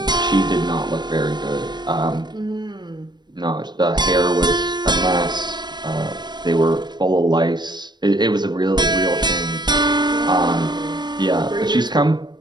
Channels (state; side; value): late; left; 0.21 ms